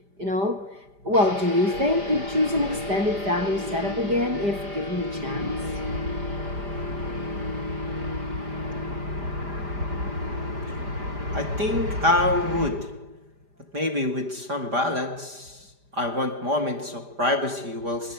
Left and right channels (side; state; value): left; late; 5.0 ms